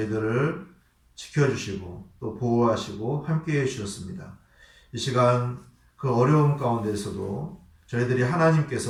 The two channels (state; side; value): identical; both; correlation 1.00